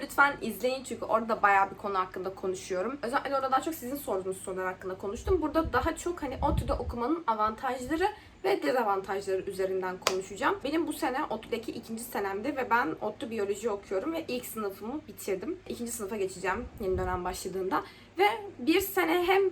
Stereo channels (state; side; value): identical; both; correlation 1.00